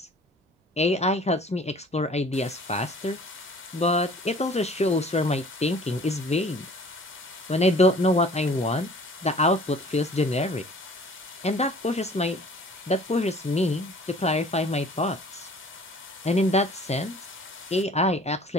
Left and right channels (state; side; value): normal; both; correlation 0.50